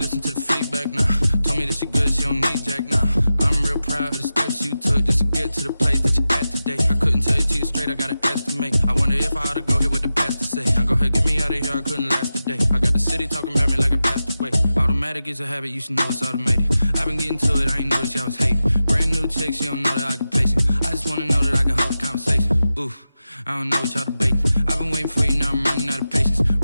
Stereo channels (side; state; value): both; inverted; correlation -0.93